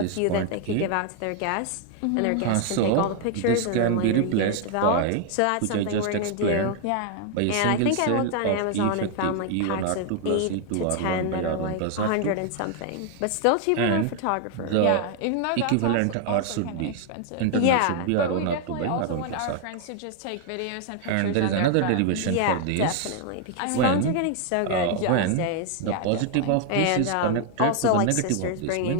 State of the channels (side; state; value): both; different; correlation 0.00